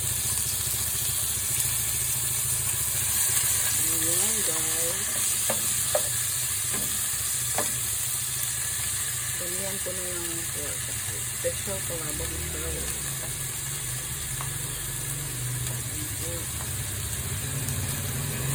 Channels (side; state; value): both; identical; correlation 1.00